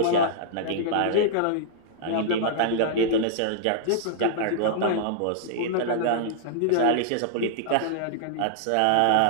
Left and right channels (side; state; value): both; different; correlation -0.01